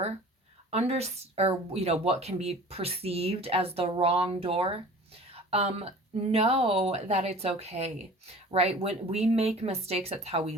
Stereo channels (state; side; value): normal; both; correlation 0.44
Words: or what can be perceived as the wrong door, know that it's okay, right? When we make mistakes, that's how we